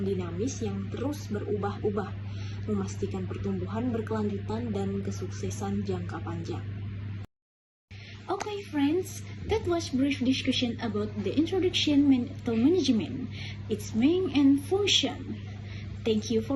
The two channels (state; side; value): identical; both; correlation 1.00